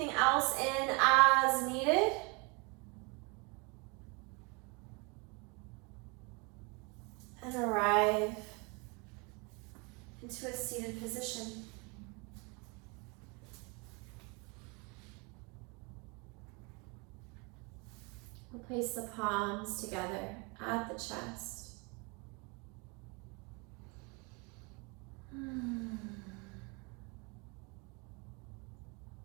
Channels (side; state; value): left; quieter; 30.6 dB